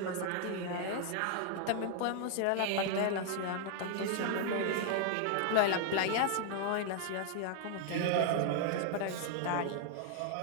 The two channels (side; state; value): both; different; correlation 0.00